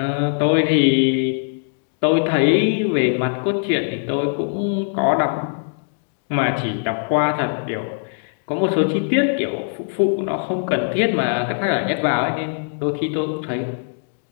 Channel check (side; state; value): right; silent; digital silence